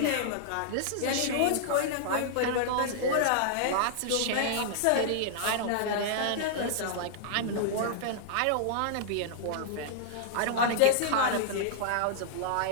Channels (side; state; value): both; different; correlation -0.01